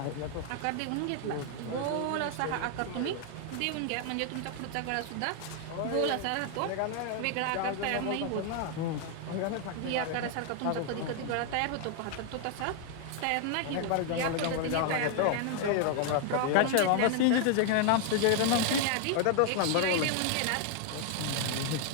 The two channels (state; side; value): different; both; correlation 0.00